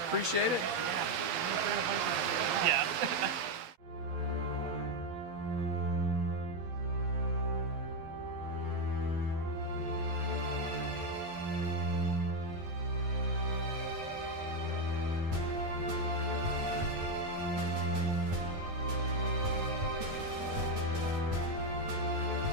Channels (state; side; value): late; left; 11 ms